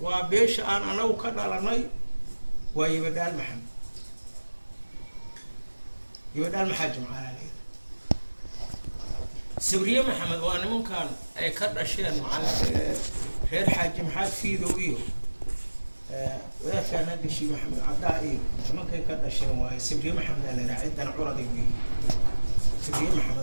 وبيش أنا وكذا لناي ويبدال محمد يبدال محاجم على ليه سوريا محمد وأنا ممكن أي كذا أشياء مع غير حاجم حاج في ذويه ولا كان هذا الشيء محمد عدائي ممكن كذا أشياء واي سوريا محمد أنا عندنا عرضي به سوريا محمد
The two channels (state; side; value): inverted; both; correlation -1.00